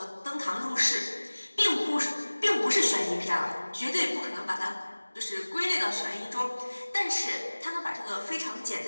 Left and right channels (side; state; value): both; inverted; correlation -1.00